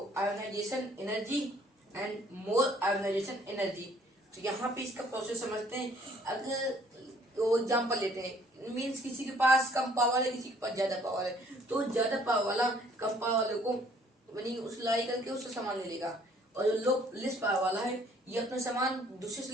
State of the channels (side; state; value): both; normal; correlation 0.60